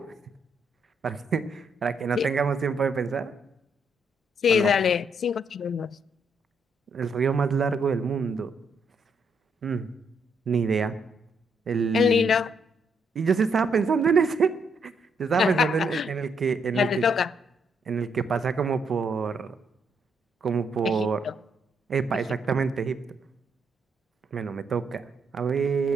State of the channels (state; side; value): normal; both; correlation 0.74